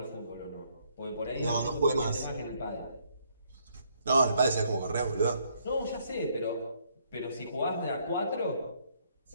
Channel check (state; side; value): inverted; both; correlation -0.69